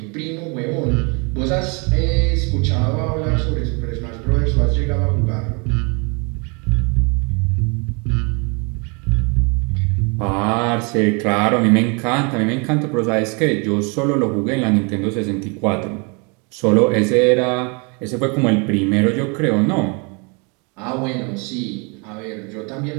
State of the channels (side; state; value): left; quieter; 32.6 dB